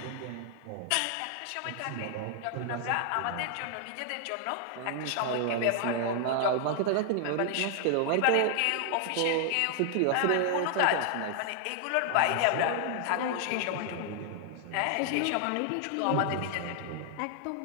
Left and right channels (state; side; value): different; both; correlation 0.00